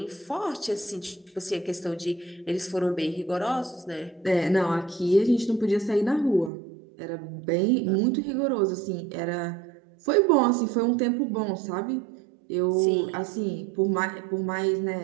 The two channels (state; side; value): drops out; left; at 6.5 s